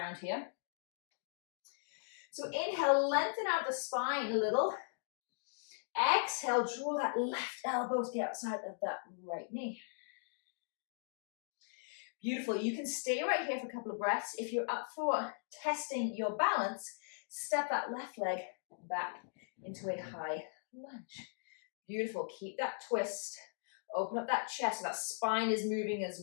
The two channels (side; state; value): right; silent; digital silence